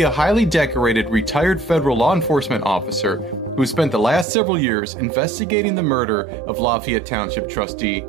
a highly decorated retired federal law enforcement officer who spent the last several years investigating the murder of Lafayette Township trustee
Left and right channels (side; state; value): left; drops out; at 4.2 s